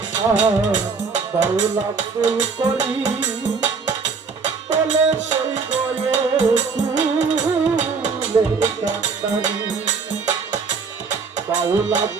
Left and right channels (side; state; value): left; quieter; 5.0 dB